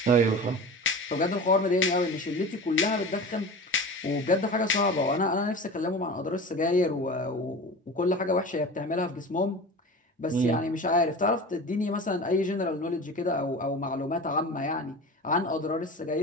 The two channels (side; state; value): both; normal; correlation 0.34